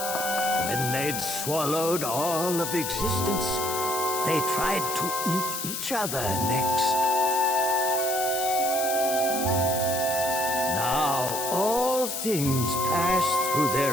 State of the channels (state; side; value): noise; left; hiss, 4 dB below the sound